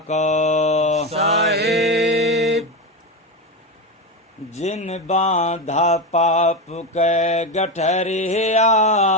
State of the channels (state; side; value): normal; both; correlation 0.16